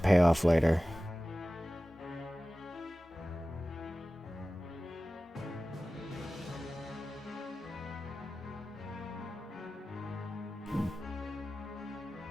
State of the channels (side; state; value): both; normal; correlation 0.96